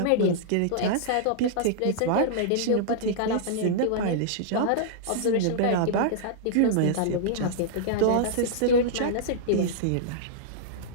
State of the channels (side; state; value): both; different; correlation -0.02